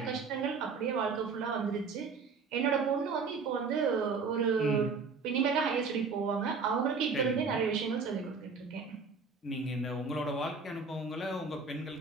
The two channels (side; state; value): left; quieter; 4.8 dB